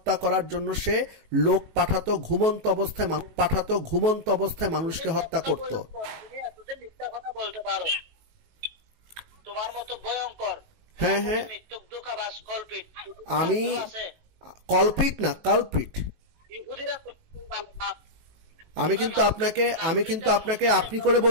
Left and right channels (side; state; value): left; late; 19 ms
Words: করার জন্য সে লোক পাঠাতো, ঘুমন্ত অবস্থায় মানুষকে হত্যা করত। তোমার মতো ভয়ঙ্কর, হ্যাঁ, আমি কলপিট না, কালপিট। আমি কিন্তু আপনাকে আপনি করে